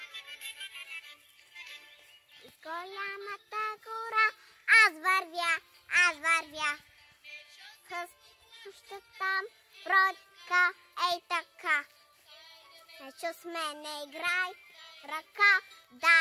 Из голямата гора аз вървя. Още там бродка, ей така. Ечо с мене играй, ръка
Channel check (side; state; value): both; identical; correlation 1.00